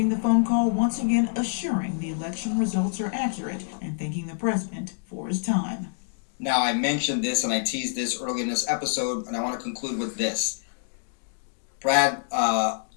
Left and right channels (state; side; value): silent; right; digital silence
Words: the phone call once again assuring the election results are accurate and thanking the president for his time. Now, I mentioned this and I teased this early in this episode, and I want to conclude with this. Brad